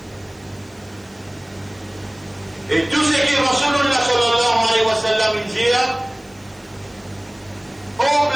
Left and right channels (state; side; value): noise; right; hiss, 29 dB below the sound